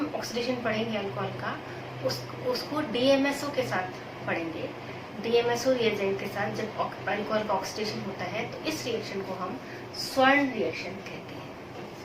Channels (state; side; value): identical; both; correlation 1.00